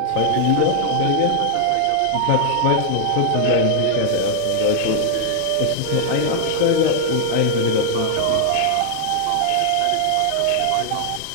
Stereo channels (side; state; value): both; different; correlation -0.01